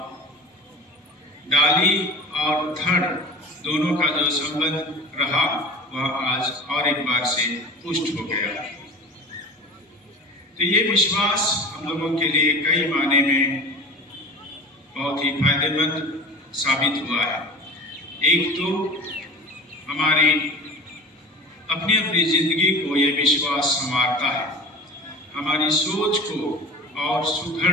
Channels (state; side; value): normal; both; correlation 0.35